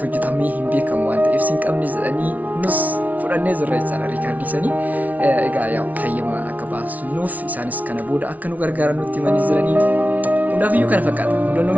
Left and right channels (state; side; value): late; left; 0.073 ms